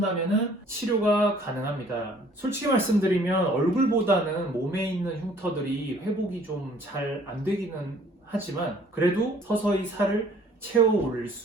치료가 가능합니다. 솔직히 말씀드리면 얼굴보다는 몸에 있는 흉터들이 회복이 좀 잘 안 되기는 하지만 그래도 서서히 살을 채워 올릴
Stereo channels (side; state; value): both; normal; correlation 0.57